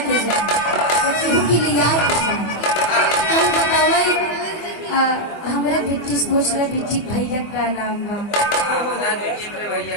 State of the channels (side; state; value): right; late; 24 ms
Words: के जा केहू की लियाई के जा तुम बतावई हमरे बेटी पूछ रहे बेटी भैया का नाम बा